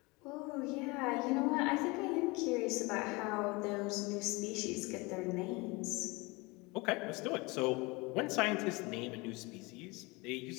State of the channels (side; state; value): right; quieter; 25.4 dB